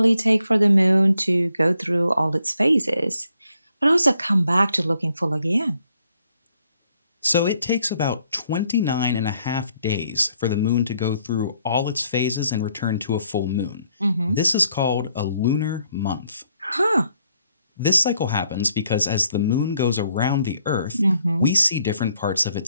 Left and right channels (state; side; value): inverted; both; correlation -0.72